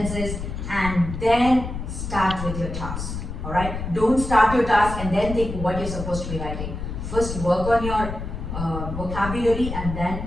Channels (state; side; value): noise; left; rumble, 6 dB below the sound